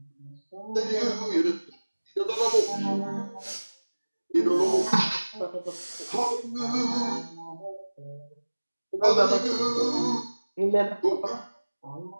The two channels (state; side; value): inverted; both; correlation -1.00